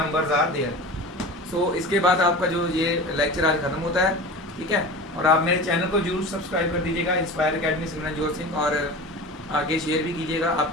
are there. So इसके बाद आपका जो ये लेक्चर आज खत्म होता है, ठीक है। और आप मेरे चैनल को जरूर सब्सक्राइब कर दीजिएगा, इंस्पायर अकेडमी सिमरनजोत सिंह, और आगे शेयर भी कीजिएगा।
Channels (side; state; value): both; normal; correlation 0.33